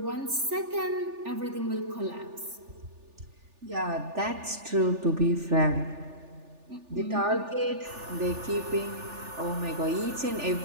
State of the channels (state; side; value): late; left; 3.4 ms